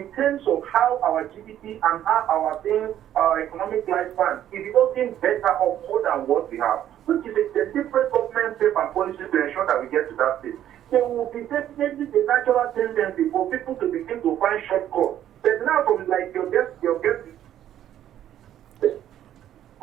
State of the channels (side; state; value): left; quieter; 11.4 dB